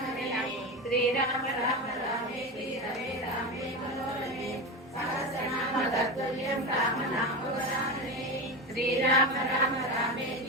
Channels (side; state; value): both; normal; correlation 0.20